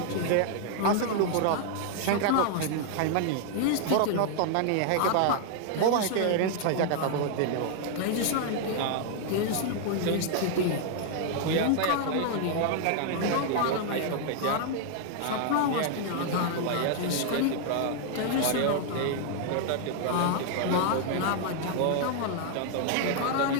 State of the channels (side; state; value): both; different; correlation 0.00